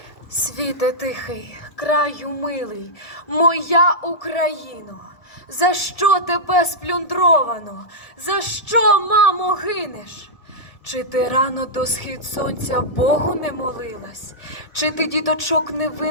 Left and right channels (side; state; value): right; late; 1.7 ms